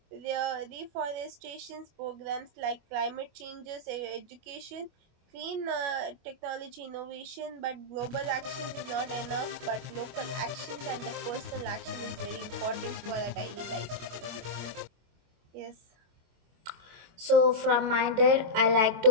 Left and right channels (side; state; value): left; late; 25 ms